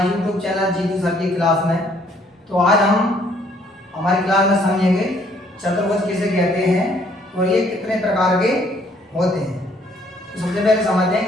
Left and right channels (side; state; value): both; normal; correlation 0.64